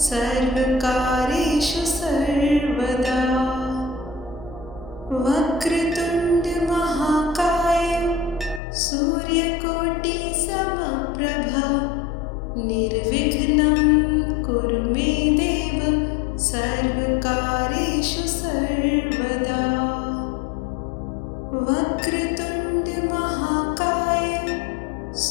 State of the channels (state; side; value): drops out; right; at 8.6 s